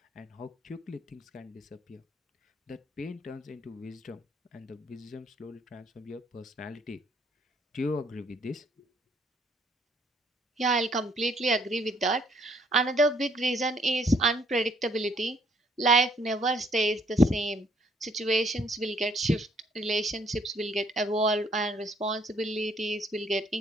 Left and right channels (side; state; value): both; normal; correlation 0.65